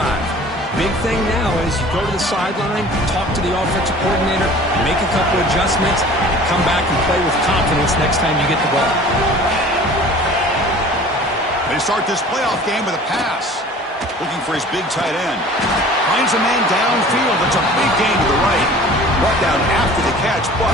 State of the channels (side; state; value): both; normal; correlation 0.45